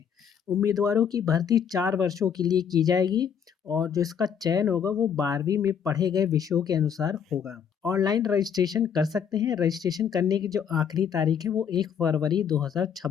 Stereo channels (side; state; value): right; quieter; 7.6 dB